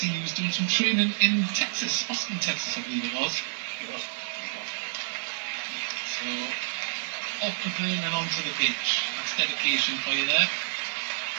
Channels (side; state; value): left; silent; digital silence